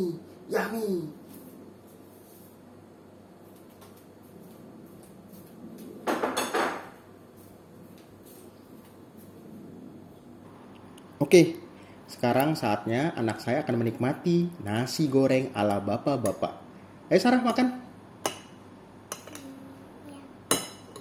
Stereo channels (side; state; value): both; identical; correlation 1.00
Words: Yummy. Oke, sekarang saatnya anak saya akan menikmati nasi goreng ala bapak-bapak. Ayo Sarah, makan.